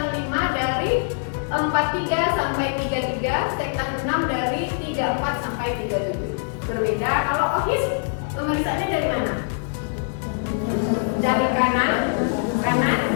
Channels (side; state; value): right; silent; digital silence